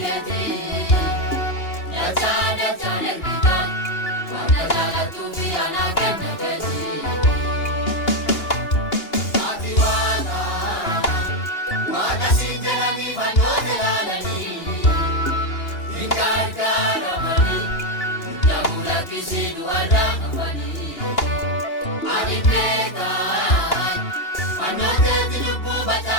keeti dachaan ergita wanta jaalatu fi ana kenna keeti ati waaqa siin jedhanii fannoota ilaalanii hin gargaaramanii namula kisii du'arraa hafanii ani beekan fannooteeti lubbuu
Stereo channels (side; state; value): right; late; 2.8 ms